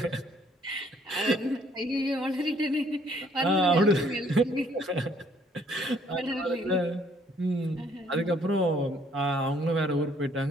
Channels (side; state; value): both; normal; correlation 0.64